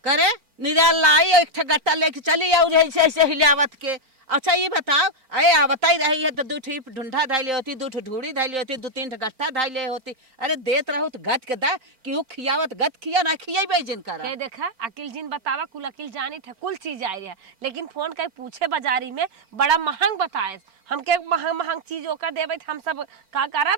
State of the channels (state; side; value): late; left; 4.4 ms